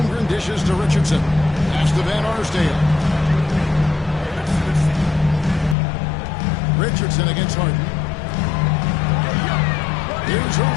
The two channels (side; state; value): right; drops out; at 5.8 s